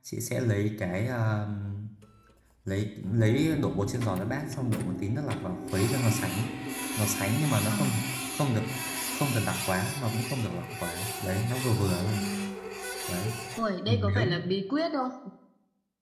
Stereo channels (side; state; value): both; identical; correlation 1.00